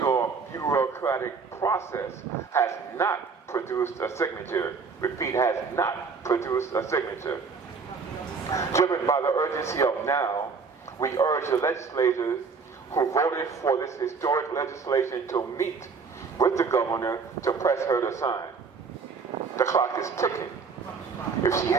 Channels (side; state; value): left; quieter; 5.1 dB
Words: bureaucratic process has not produced a signature. Repeat, has not produced a signature. Driven by the urgency of now, we urge the legislators who voted for this historic legislation to meet with the governor to press her to sign. The clock is ticking. If she